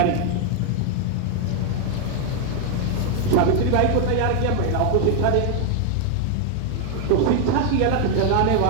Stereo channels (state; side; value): different; both; correlation 0.00